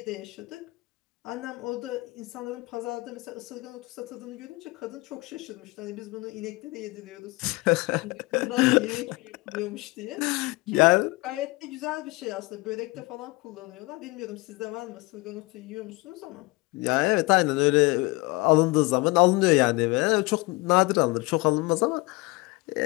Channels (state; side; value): quieter; right; 23.9 dB